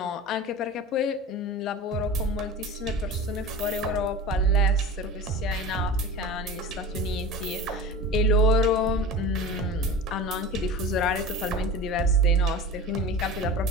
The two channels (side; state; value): both; normal; correlation 0.33